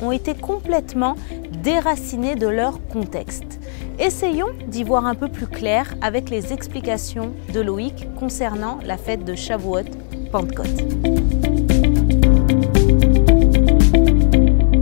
ont été complètement déracinées de leur contexte. Essayons d'y voir un peu plus clair avec les explications de Loïc concernant la fête de Shavuot, Pentecôte.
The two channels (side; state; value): right; silent; 60 dB below the other